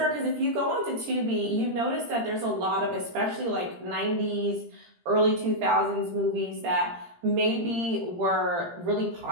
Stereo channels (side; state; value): left; late; 17 ms